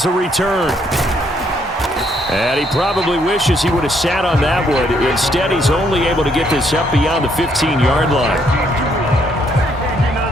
a return. And he probably wishes he would have sat on that one. Instead, he's only able to get this up beyond the 15-yard line.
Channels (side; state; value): both; normal; correlation 0.70